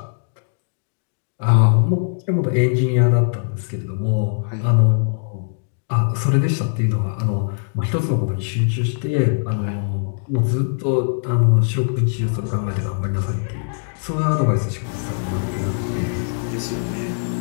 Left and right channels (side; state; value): right; silent; digital silence